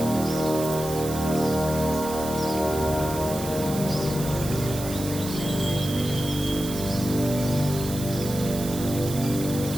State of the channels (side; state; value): right; noise; hiss, 10 dB below the sound